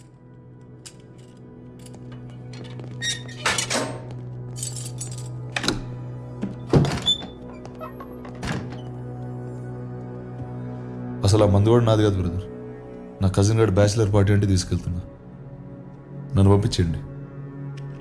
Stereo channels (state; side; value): identical; both; correlation 1.00